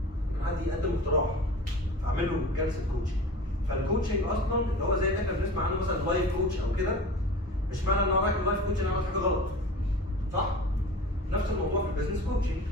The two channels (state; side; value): normal; both; correlation 0.37